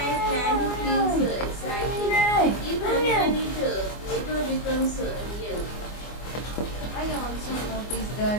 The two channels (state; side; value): late; right; 24 ms